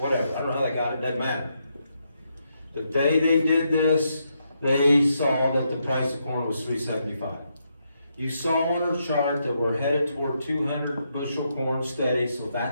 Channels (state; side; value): inverted; both; correlation -0.80